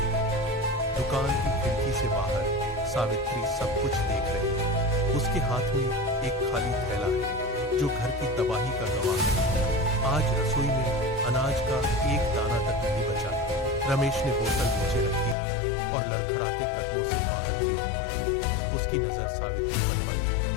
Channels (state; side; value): drops out; right; at 15.4 s